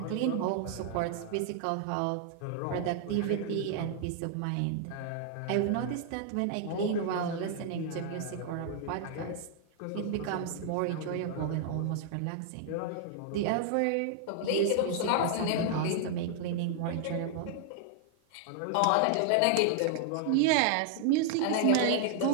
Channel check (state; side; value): different; both; correlation 0.00